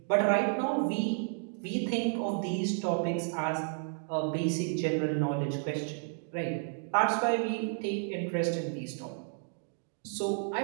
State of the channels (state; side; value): silent; left; 57 dB below the other